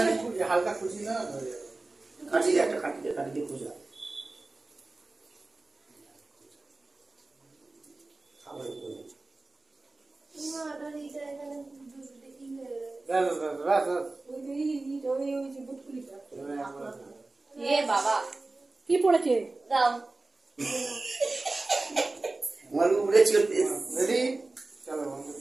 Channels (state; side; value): quieter; left; 3.2 dB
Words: হালকা খুশি না কাটি দিয়ে একটা কাটি দিয়ে খুঁজা খাবার কই মাটার এই জায়গায় দেখি ওই যে বুটকুলিটা এ বাবা কি পড়েছে? দাও আমার উড়েছে রেডি চলো বন্ধু